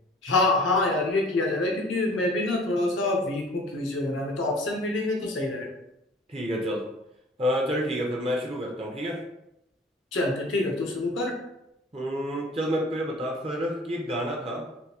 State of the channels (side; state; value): both; normal; correlation 0.49